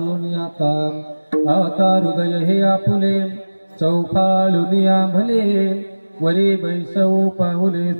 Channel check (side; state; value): both; inverted; correlation -1.00